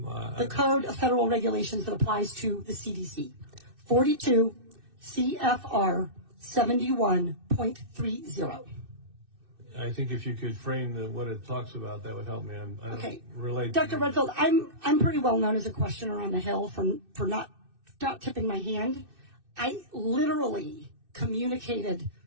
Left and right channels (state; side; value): late; left; 2.6 ms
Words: The Code of Federal Regulations that applies to the CDC. 42 CFR 71.30. I think if you could frame what it talks about, that would help me. I don't relate. Dr. Redfield, I'm pretty well known as a questioner on the Hill for not tipping my hand. I literally communicated